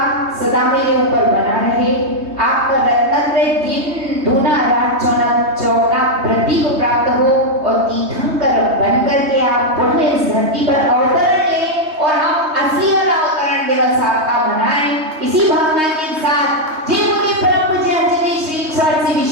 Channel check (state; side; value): late; left; 3.2 ms